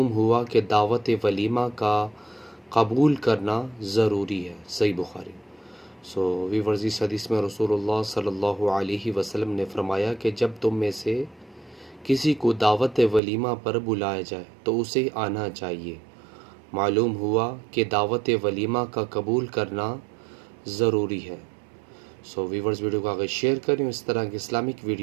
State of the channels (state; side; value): drops out; left; at 13.2 s